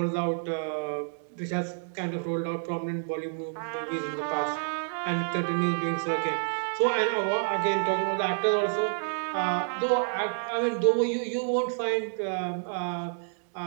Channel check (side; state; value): left; silent; digital silence